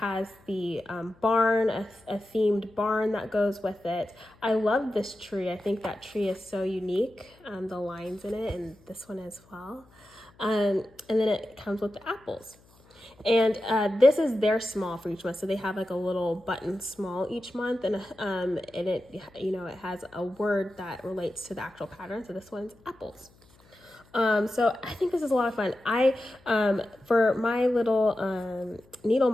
the barn, a themed barn that goes with it. I love this tree. I think that tree is so unique, the lines in it, and this one as well. And then it comes with the apples. And this is their small for each month. So they have like a little button small each month, and it, you know, it has a word that relates to the actual pattern. So this one's apples. So I think this is a lot of fun. For my little needle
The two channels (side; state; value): left; noise; hum, 29 dB below the sound